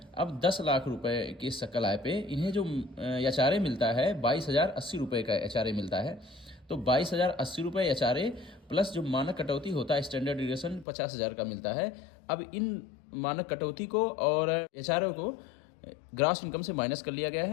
अब 10 लाख रुपए के सकल आय पे इन्हें जो एचआरए मिलता है 22,080 रुपये का एचआरए मिलता है। तो 22,080 रुपये एचआरए प्लस जो मानक कटौती होता है स्टैंडर्ड डिविएशन 50,000 का मिलता है। अब इन मानक कटौती को और एचआरए को ग्रास इनकम से माइनस कर लिया गया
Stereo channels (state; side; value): drops out; right; at 10.9 s